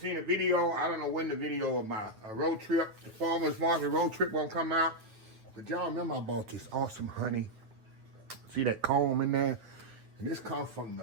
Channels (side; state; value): left; late; 9.1 ms